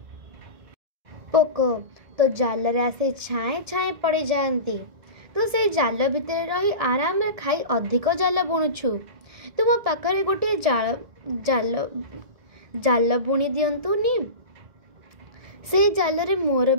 पोक तो जाल रे आसे छाए छाए पड़े जाती, तो से जाल भितर रही आराम रे खाई अधिक जाल बुणुछु। तो मो पाखरे गोटे जाल जाल जाल बुणी दियंतुनी, से जाल रे मोर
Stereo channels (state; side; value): late; left; 1.7 ms